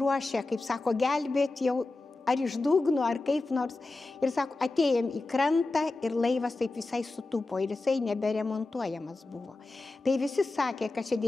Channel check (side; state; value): right; quieter; 3.2 dB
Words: kaip sako, gelbėt jau ar iš dugno, ar kaip nors. Ir sako, atėjom į krantą ir laivas taip visai sutūpo ir jisai neberemontuojamas buvo. Tai visi sakė, kad čia